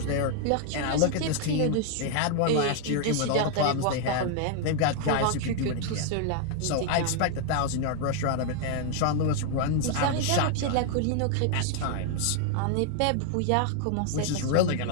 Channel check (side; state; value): both; different; correlation 0.00